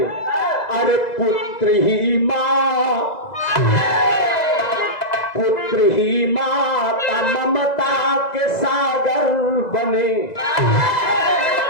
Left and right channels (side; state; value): right; late; 2.0 ms